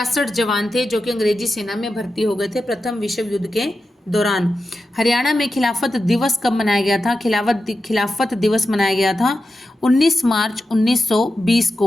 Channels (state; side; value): normal; both; correlation 0.90